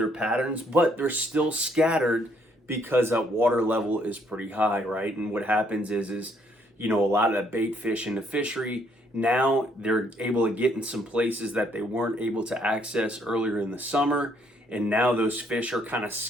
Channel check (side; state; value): both; normal; correlation 0.68